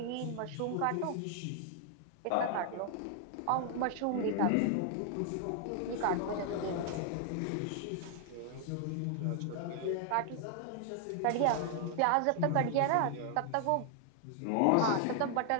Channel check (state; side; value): different; both; correlation 0.00